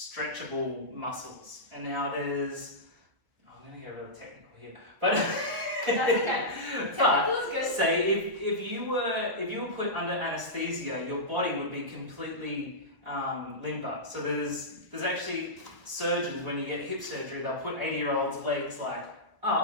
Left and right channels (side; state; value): left; late; 1.6 ms